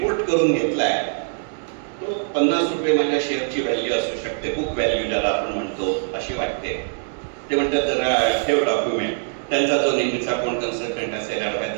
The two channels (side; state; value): left; silent; digital silence